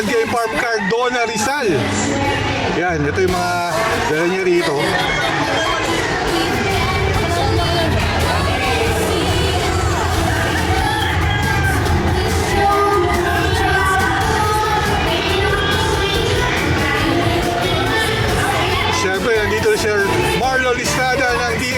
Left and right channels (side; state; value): both; identical; correlation 1.00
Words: Game Farm, Cardona, Rizal. Yan, ito yung mga dala niya rito. Siyempre, nandito si Sir Marlo Listrada ng